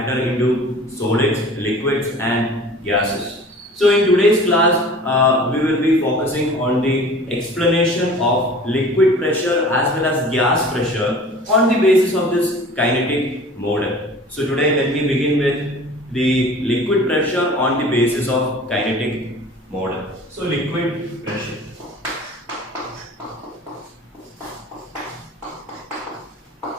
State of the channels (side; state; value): both; normal; correlation 0.44